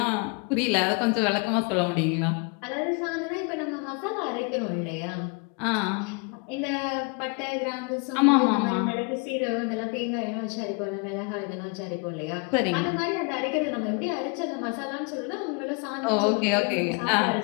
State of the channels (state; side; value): quieter; right; 34.2 dB